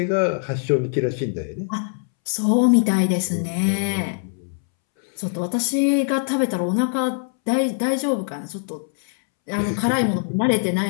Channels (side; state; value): right; silent; 64 dB below the other